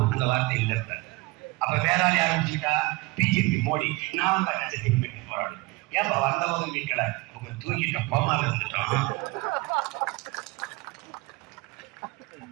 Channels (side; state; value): left; quieter; 23.4 dB